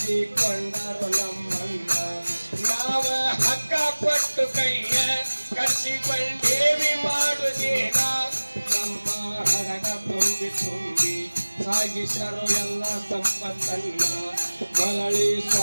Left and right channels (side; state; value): both; inverted; correlation -1.00